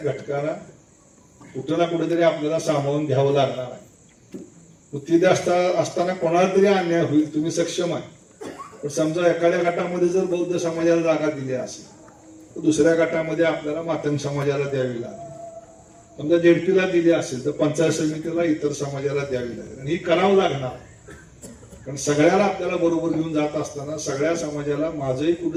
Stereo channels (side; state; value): both; identical; correlation 1.00